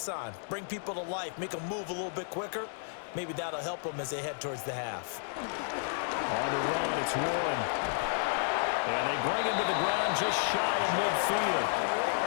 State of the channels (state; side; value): silent; right; digital silence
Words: on, bring people to life, make them move a little bit quicker. Maybe that'll help them as they head towards the half. On the run, it's Warren. And they bring him to the ground just shy of midfield.